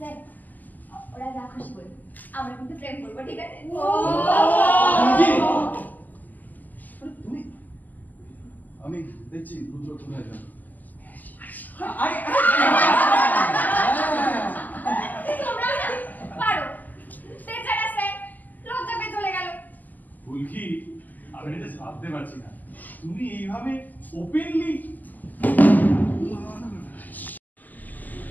ওরা যা খুশি বলে আমরা কিন্তু প্রেম করবো ঠিক আছে তুমি আমি দেখছি রুদ্র কোথায় যাবে তোমরা না পারো বেচারা স্যার লজ্জা পেয়ে চলে গেল ফুলকি আমি এটা ভাবতে পারছি না তুমি এইভাবে ওপেনলি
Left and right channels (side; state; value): right; late; 0.083 ms